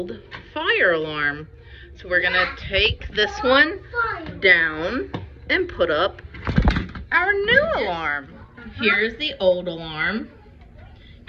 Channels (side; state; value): both; identical; correlation 1.00